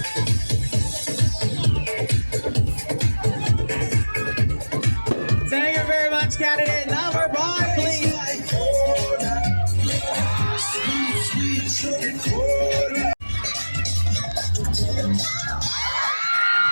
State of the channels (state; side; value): inverted; both; correlation -1.00